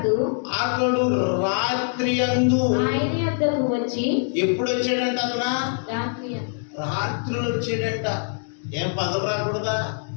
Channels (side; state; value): right; silent; digital silence